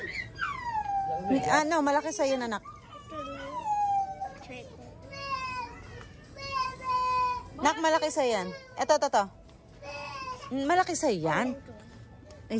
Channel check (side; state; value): both; identical; correlation 1.00